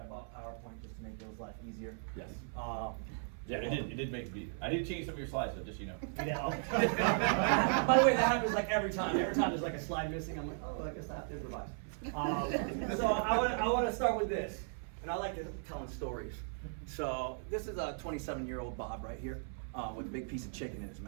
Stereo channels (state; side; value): silent; left; 53 dB below the other